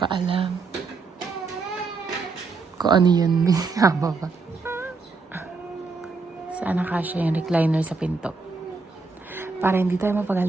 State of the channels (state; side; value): quieter; left; 4.2 dB